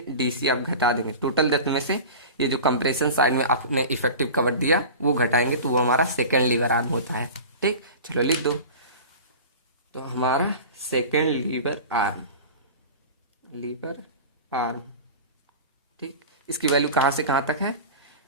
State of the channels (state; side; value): inverted; both; correlation -0.34